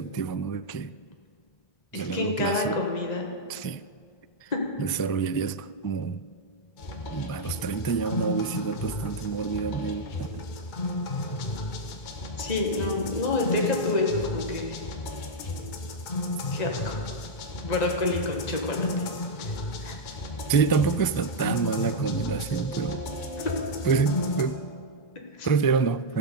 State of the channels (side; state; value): right; late; 1.0 ms